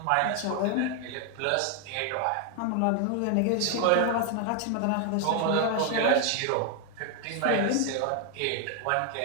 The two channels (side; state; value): both; different; correlation 0.00